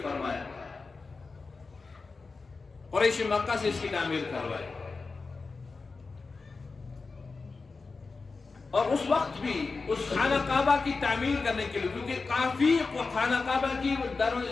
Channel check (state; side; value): quieter; right; 4.2 dB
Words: فرمایا، قریش مکہ سے اس کی تعمیر کروائی۔ اور اس وقت بھی اس خانہ کعبہ کی تعمیر کرنے کے لیے، کیونکہ کافی خانہ کعبہ کی